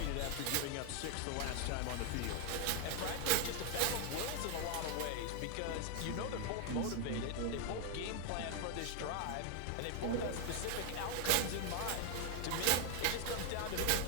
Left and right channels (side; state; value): both; different; correlation 0.01